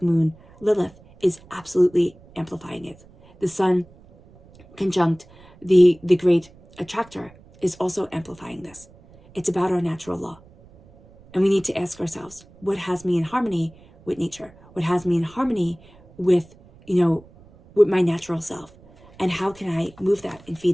Moon Lilith is absolutely amplifying it. The Sun conjunct the Great Attractor is also amplifying this. It's about our natural law. And we need to ask ourselves, what has me in harmony with nature? What has me in harmony with, with my natural self? And how can I move that and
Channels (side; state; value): right; noise; rumble, 25 dB below the sound